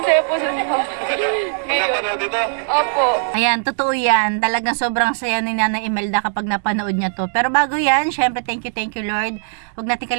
saya po sa mga. Ngayon. Napanood dito? Opo. Ayan, totoo yan. Talagang sobrang saya ni Nanay Imelda kapag napanood niya to. Pero bago yan, syempre thank you Lord. Huwag natin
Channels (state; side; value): silent; left; 66 dB below the other